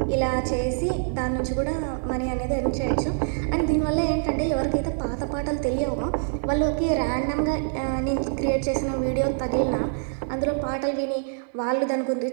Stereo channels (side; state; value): left; silent; digital silence